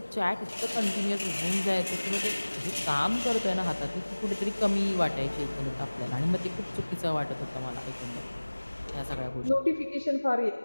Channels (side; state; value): both; inverted; correlation -1.00